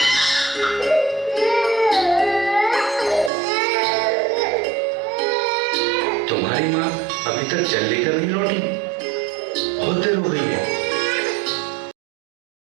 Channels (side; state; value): left; drops out; at 3.3 s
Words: तुम्हारी माँ अभी तक जल लेकर नहीं लौटी, बहुत देर हो गई है।